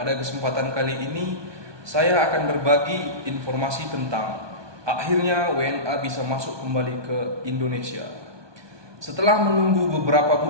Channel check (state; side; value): late; left; 1.2 ms